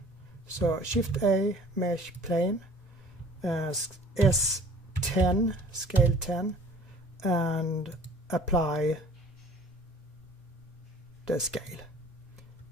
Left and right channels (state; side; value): normal; both; correlation 0.48